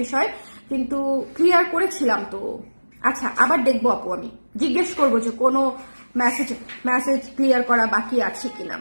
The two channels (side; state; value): both; inverted; correlation -1.00